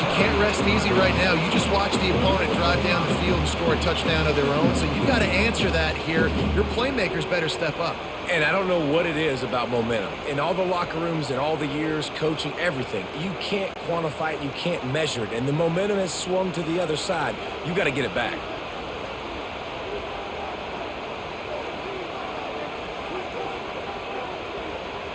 can't rest easy right now. You just watch the opponent drive down the field and score a touchdown of their own. So you've got to answer that here. Your playmakers better step up. And I don't know what it is about momentum. In all the locker rooms, in all the years, coaching, everything, you can't quantify it, you can't measure it. And the momentum has swung to the other side. You got to get it back.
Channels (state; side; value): identical; both; correlation 1.00